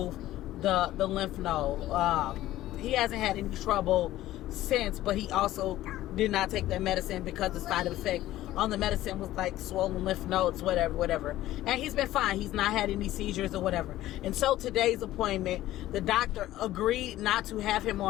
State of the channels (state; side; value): quieter; right; 14.9 dB